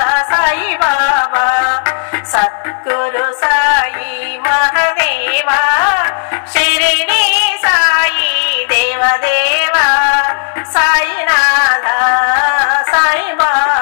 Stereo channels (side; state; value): right; silent; digital silence